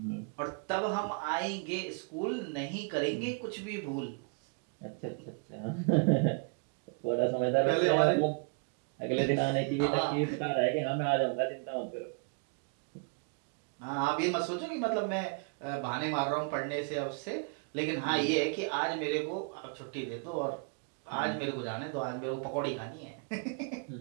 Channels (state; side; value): quieter; left; 37.9 dB